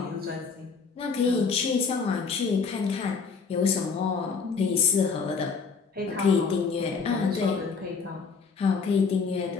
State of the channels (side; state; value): right; quieter; 5.2 dB